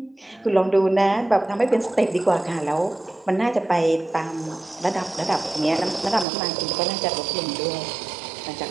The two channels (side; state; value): left; drops out; at 6.2 s